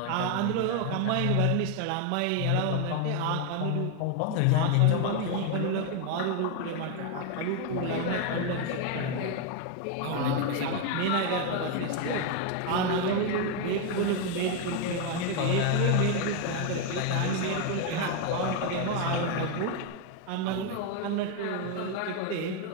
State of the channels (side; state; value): both; different; correlation 0.01